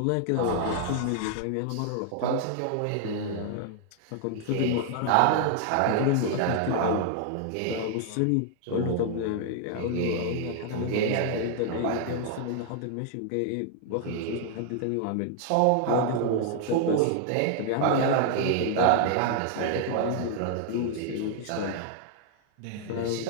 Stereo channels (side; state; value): both; different; correlation 0.00